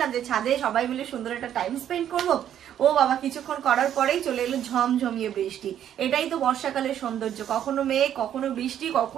যে ছাদে সবাই মিলে সুন্দর একটা টাইম স্পেন্ড করবো। ও বাবা, কিছুক্ষণ করার পরেই চলে এলো ঝমঝমিয়ে বৃষ্টি। এটাই তো বর্ষাকালের সৌন্দর্য, কখনো মেঘ, কখনো বৃষ্টি,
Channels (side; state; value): left; quieter; 10.3 dB